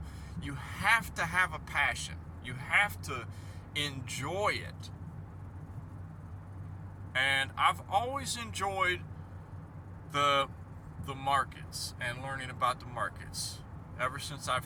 passion. You have to enjoy it. And I've always enjoyed the markets and learning about the markets ever since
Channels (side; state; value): both; identical; correlation 1.00